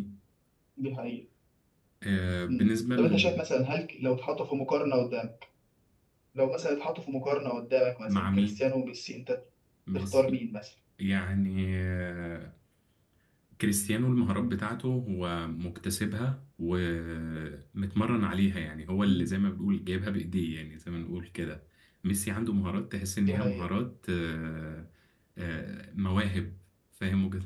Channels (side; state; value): both; identical; correlation 1.00